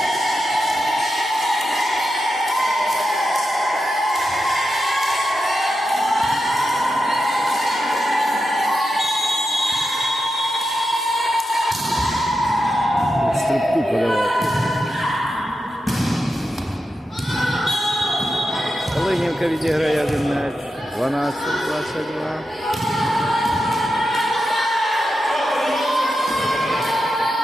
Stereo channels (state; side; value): normal; both; correlation 0.88